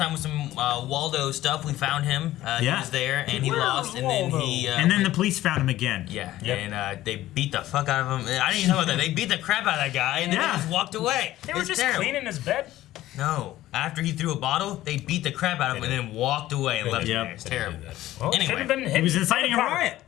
with some Waldo stuff, we found him. He Yeah. was there, and he Where lost, was and then Waldo? he. And then the police found him again. Yeah, Yep. and they beat the fuck out of him. I didn't even know about that. They beat the crap out of that guy, and then Yeah. they just walked away. They were It's just terrible. cleaning his bed. No, after he threw a bottle, they beat the crap out of him and then walked away and left him Yep. there. It's terrible. Well, Anyway. should have been hit. He was inciting a riot.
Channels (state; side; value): quieter; right; 15.0 dB